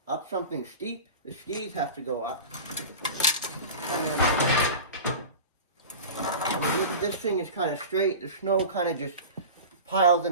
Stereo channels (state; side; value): inverted; both; correlation -0.32